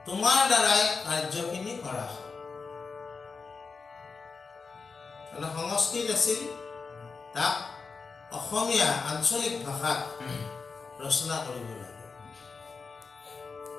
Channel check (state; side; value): quieter; right; 4.8 dB